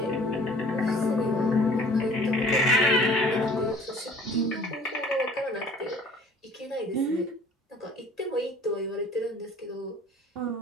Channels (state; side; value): normal; both; correlation 0.51